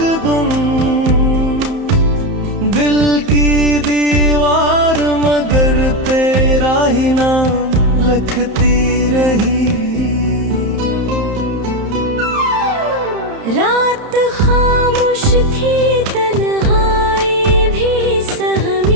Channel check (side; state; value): left; late; 31 ms